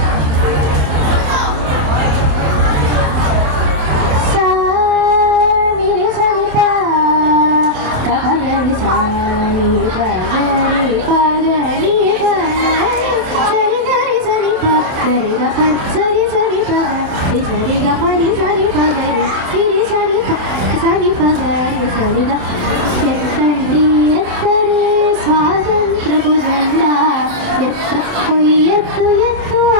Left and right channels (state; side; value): late; left; 27 ms